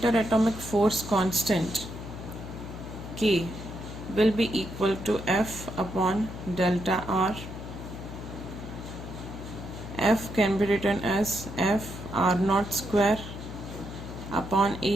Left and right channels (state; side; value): noise; left; hum, 10 dB below the sound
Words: force constant K will be equal to F upon delta R. F can be written as F R naught square upon